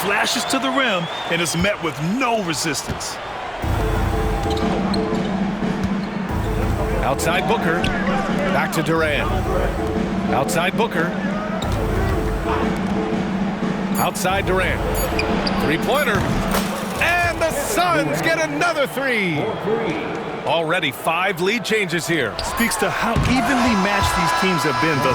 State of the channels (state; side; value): identical; both; correlation 1.00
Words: to the rim and is met with no resistance. Outside Booker. Back to Durant. Outside Booker. Outside Durant. Three-pointer. And the Suns get another three. Already 5 lead changes here. Speaks to how evenly matched these teams have been